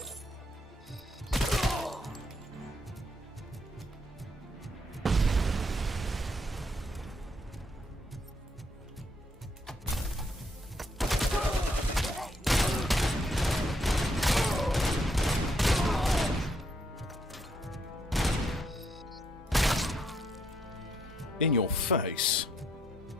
In your face.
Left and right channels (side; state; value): both; normal; correlation 0.73